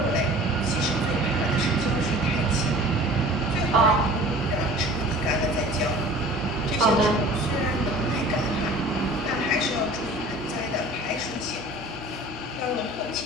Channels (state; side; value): normal; both; correlation 0.45